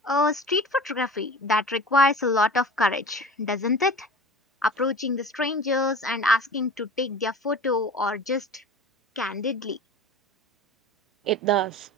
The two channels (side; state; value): both; normal; correlation 0.37